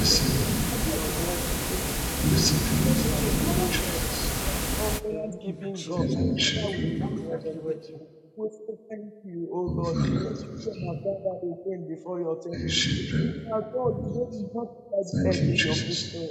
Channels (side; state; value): both; identical; correlation 1.00